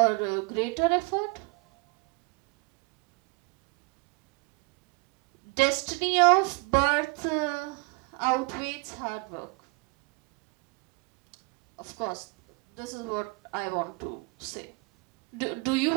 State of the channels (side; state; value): left; quieter; 29.1 dB